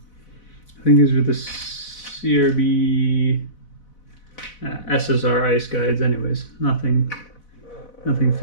think these are the CRB SSR ice guides anyways. Nothing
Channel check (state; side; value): late; right; 4.0 ms